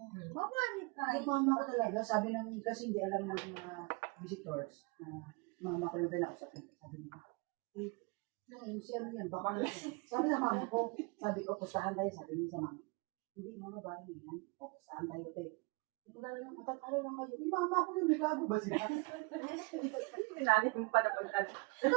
Yung mama ko talaga, sabi ng, kasi hindi alam ng mga visitors, na mama ko yung pinakausapin. Sabi niya, MC ano yan, baka nga. Sabi sa mama ko, sabi ko, pustahan tayo, sabi niya sa mama. Hindi mga babae yan, pustahan tayo, te. Matatalo lang kayo. Yung mama ko yung gago ba sila? Nani mo pa na pagdala.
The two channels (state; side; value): quieter; left; 28.9 dB